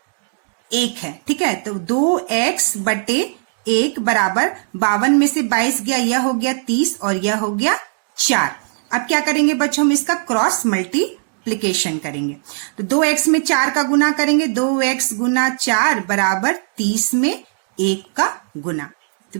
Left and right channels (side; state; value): left; silent; digital silence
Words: 1 है। ठीक है, तो 2x/1 बराबर 52 में से 22 गया, यह हो गया 30 और यह हो गया 4। अब क्या करेंगे बच्चों, हम इसका क्रॉस मल्टीप्लीकेशन करेंगे। तो 2x में 4 का गुना करेंगे, 2x गुना 4 बराबर 30 में 1 का गुना, तो